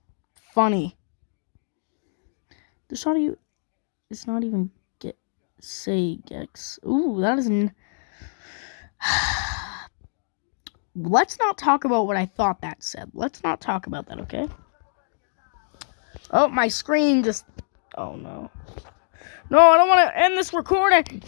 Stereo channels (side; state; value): right; silent; digital silence